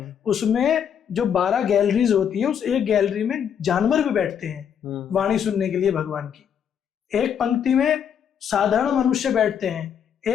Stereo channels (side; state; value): right; quieter; 8.3 dB